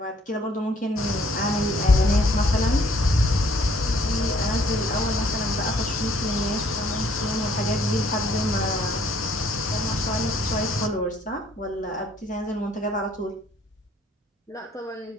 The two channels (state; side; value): normal; both; correlation 0.62